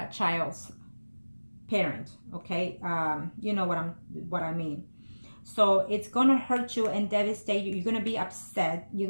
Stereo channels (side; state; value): both; inverted; correlation -1.00